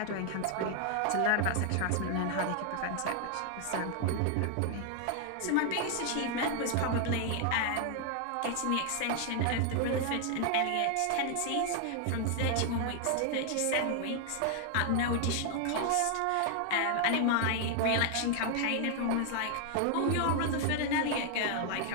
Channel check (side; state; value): both; different; correlation 0.00